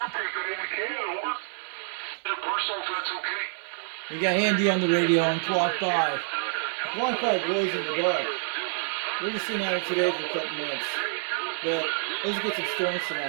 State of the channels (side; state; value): left; silent; 60 dB below the other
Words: Okay, good if we can. Over. Personal, if that's okay. We got Andy on the radio on Quad5. Quad5 blows in the dark. We're just sitting out today for a couple minutes. But let's get some storms